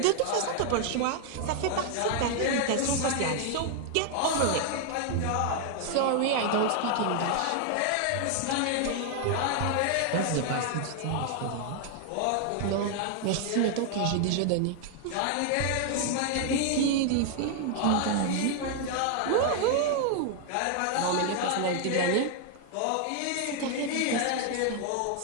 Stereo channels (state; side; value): different; both; correlation 0.00